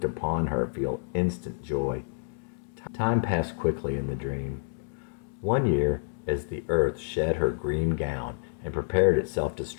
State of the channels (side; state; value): right; silent; digital silence